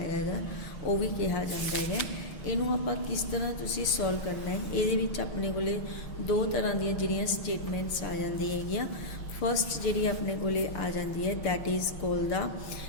वो भी कहा जाता है। इनू आप किस तरह तुसी सॉल्व करना है, ये अपने को दो तरह दी जिहड़ियां स्टेटमेंट्स आ जाती है। फर्स्ट जी अपने को आ जाती है that is call the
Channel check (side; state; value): right; late; 6.3 ms